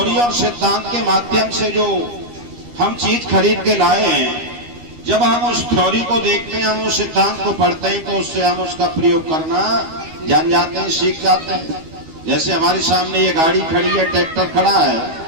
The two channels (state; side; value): late; left; 13 ms